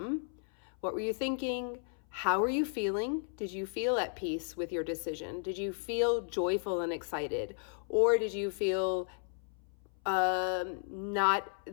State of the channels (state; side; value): silent; right; 55 dB below the other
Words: What were you thinking? How are you feeling? Did you feel at peace with your decision? Did you feel joyful and excited? Or did you feel not